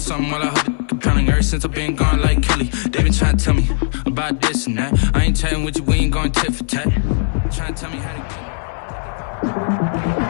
while I hold it compelling. Ever since I've been gone like Kelly, they been trying to tell me about this and that. I ain't chatting with you, we ain't going tit for tat. Trying to tell me how to get.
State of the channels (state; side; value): silent; right; 60 dB below the other